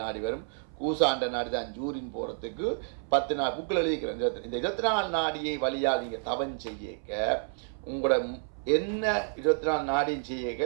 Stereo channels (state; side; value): silent; left; 58 dB below the other